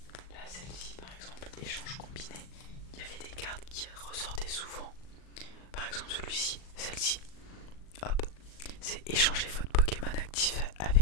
Là celle-ci par exemple, échange combiné, il y avait des cartes qui ressortaient souvent. Par exemple celui-ci, celle-ci, hop, c'est échanger votre Pokémon actif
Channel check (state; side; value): late; right; 38 ms